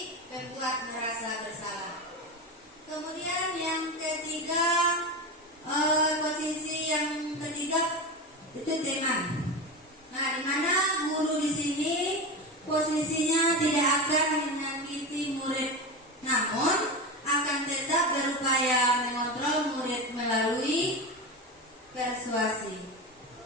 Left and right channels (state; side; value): normal; both; correlation 0.20